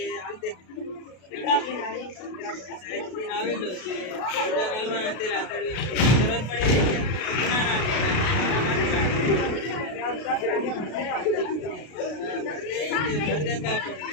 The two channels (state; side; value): late; right; 33 ms